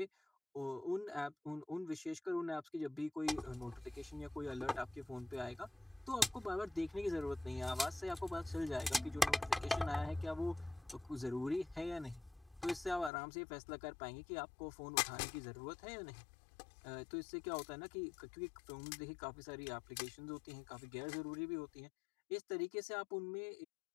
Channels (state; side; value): drops out; right; at 13.1 s